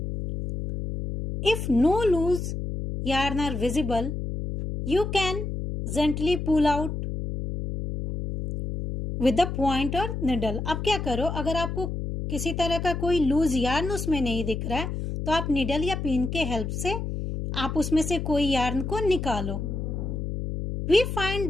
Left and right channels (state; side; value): noise; left; hum, 4 dB below the sound